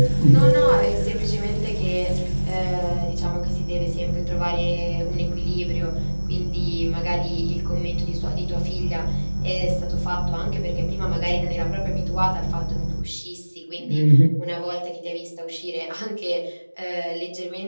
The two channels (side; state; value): both; inverted; correlation -1.00